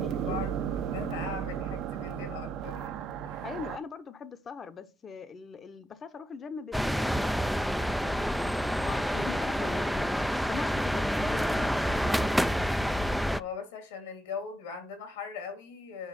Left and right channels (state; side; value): normal; both; correlation 0.84